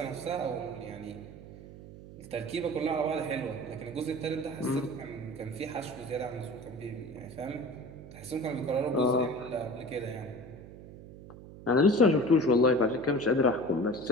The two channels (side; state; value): right; noise; hum, 16 dB below the sound